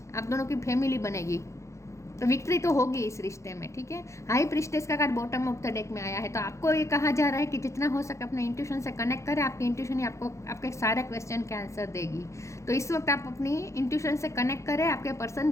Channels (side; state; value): right; late; 0.14 ms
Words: आप दोनों की फैमिली बनेगी। तो विक्ट्री तो होगी इस रिश्ते में, ठीक है। हाई प्रिस्टेस का card bottom of the deck में आया है। तो आपको ये कहा जा रहा है कि जितना हो सके अपने इंट्यूशन से कनेक्ट करें। आपकी इंट्यूशन ही आपको आपके सारे क्वेश्चन के आंसर देगी। तो इस वक्त आप अपनी इंट्यूशन से कनेक्ट करें। आपके